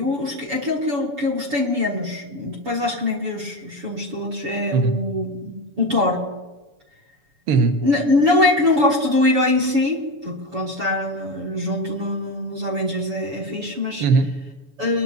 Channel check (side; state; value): left; late; 7.0 ms